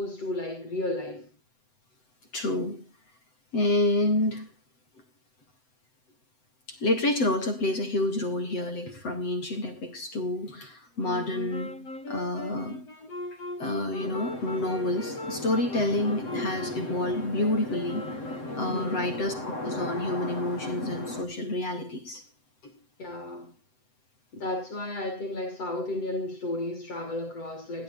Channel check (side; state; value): right; late; 7.9 ms